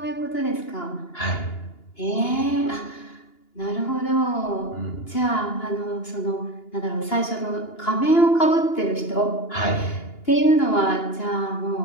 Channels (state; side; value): late; right; 2.9 ms